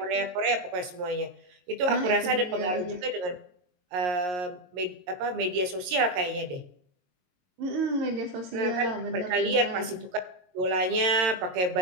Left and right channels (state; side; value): late; left; 22 ms